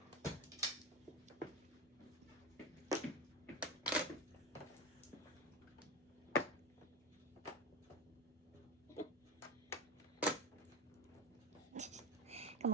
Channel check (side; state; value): both; normal; correlation 0.20